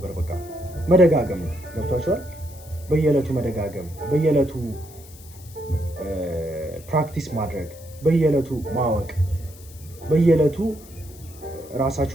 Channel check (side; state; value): left; noise; hiss, 21 dB below the sound